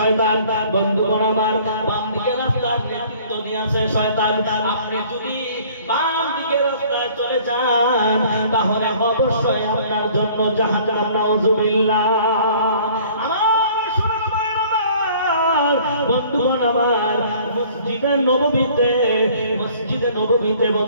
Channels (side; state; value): both; inverted; correlation -0.53